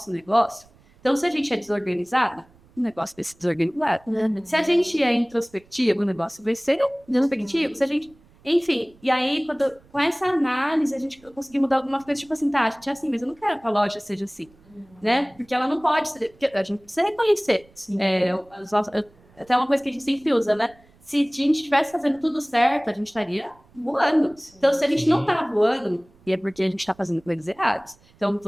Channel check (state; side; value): noise; right; rumble, 29 dB below the sound